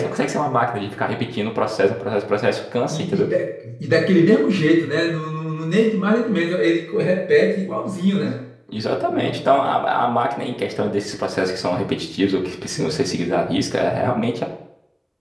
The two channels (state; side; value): identical; both; correlation 1.00